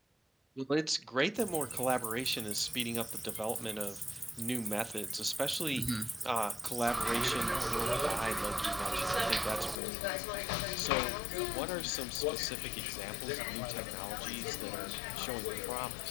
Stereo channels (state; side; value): drops out; right; at 9.8 s